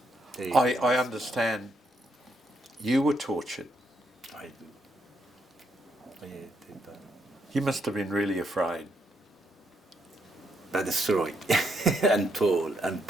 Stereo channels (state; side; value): normal; both; correlation 0.77